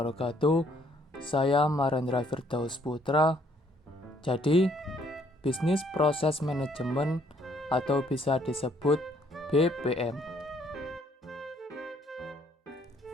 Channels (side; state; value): both; normal; correlation 0.66